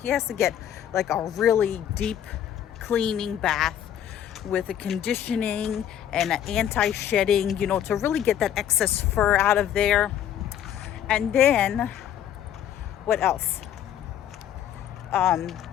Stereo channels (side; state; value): right; quieter; 10.3 dB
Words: He has to get like a really deep cleaning bath with a conditioning and an anti-shedding, you know, to really get that excess fur out of there. And then what else?